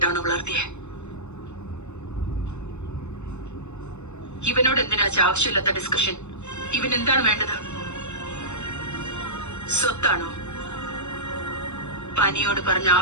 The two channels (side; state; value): right; late; 0.82 ms